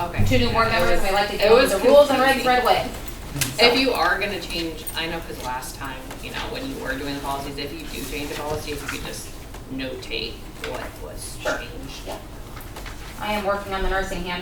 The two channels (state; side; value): identical; both; correlation 1.00